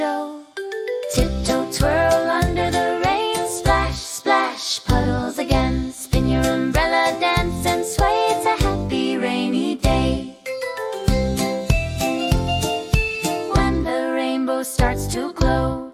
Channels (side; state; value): both; identical; correlation 1.00